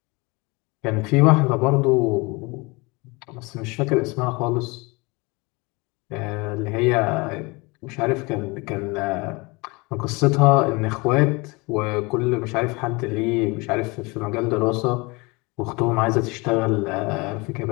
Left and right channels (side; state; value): right; quieter; 26.3 dB